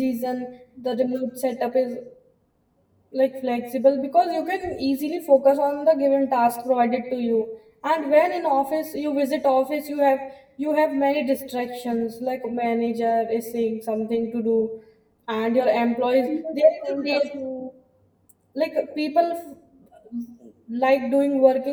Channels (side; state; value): both; identical; correlation 1.00